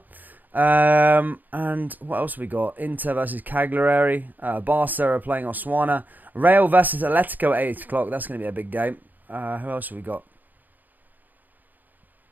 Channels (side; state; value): left; late; 0.085 ms